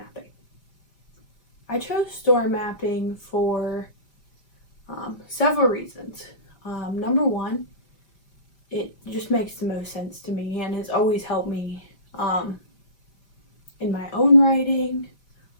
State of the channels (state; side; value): late; right; 5.1 ms